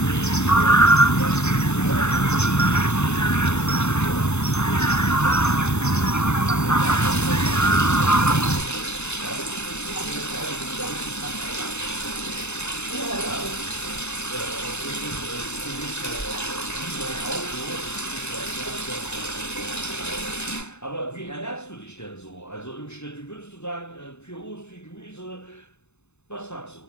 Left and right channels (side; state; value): right; late; 0.81 ms